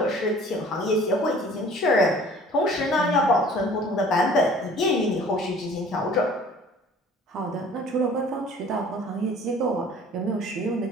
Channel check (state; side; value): normal; both; correlation 0.49